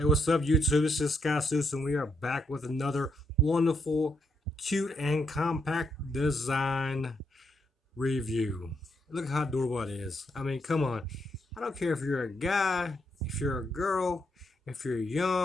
what's up, YouTube? This is Sky Seuss, and we are back with another wonderful, cute, and compact design review. Look how adorable it is. I mean, come on. I don't care if you're a guy, if you're a girl, if you're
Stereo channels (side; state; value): both; normal; correlation 0.78